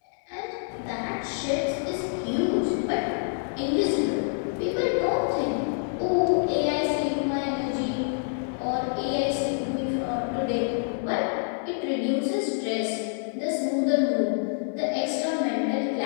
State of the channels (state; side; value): silent; right; digital silence